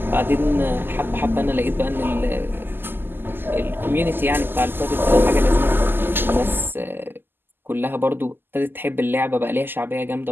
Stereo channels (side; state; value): left; late; 0.097 ms